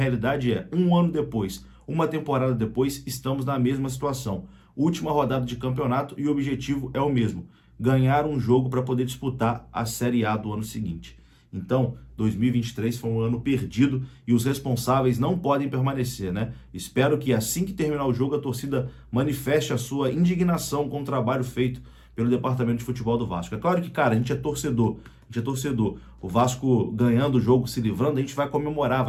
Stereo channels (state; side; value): identical; both; correlation 1.00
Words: é, um ano depois, Uma temporada depois, estamos na mesma situação. Última rodada de campeonato e o objetivo é o mesmo: ganhar um jogo para poder disputar a Série A do ano seguinte. Então, 2023 foi um ano perdido e os responsáveis não podem permanecer, né? Espero que assim que terminar o jogo a torcida manifeste a sua indignação com o trabalho feito pelo departamento de futebol do Vasco. É claro que, cara, a gente é torcedor. O Vasco ganhando o jogo, se livrando, a gente vai comemorar,